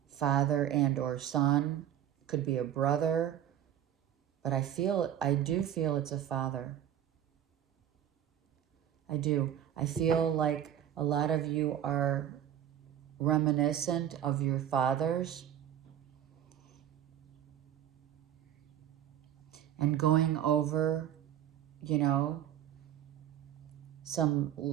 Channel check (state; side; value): quieter; left; 10.6 dB